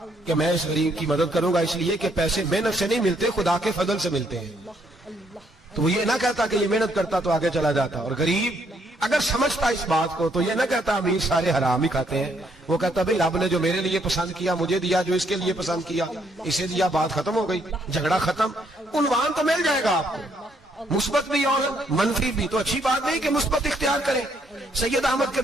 کہ میں اس غریب کی مدد کروں گا اس لیے کہ پیسے محنت سے نہیں ملتے خدا کے فضل سے ملتے ہیں، تو وہ یہ نہ کہتا کہ یہ محنت کرتا تو آگے چلا جاتا، اور غریب اگر سمجھتا اس بات کو تو یہ نہ کہتا امیر سارے حرام ہی کھاتے ہیں، وہ کہتا بھئی رب نے جو میرے لیے پسند کیا مجھے دیا، جو اس کے لیے پسند کیا اسے دیا، بات ختم ہو گئی، جھگڑا ختم۔ عنوان تو مل جائے گا آپ کو، مثبت بھی اور منفی بھی، تو اچھی بات نہیں کہ مثبت اختیار کریں۔ سید احمد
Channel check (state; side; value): normal; both; correlation 0.71